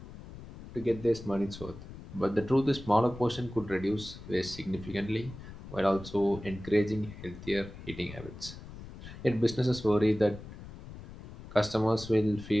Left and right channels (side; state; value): left; noise; rumble, 14 dB below the sound